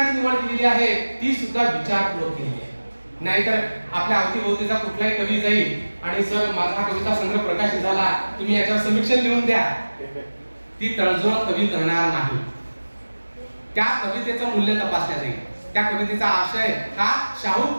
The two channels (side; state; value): both; inverted; correlation -1.00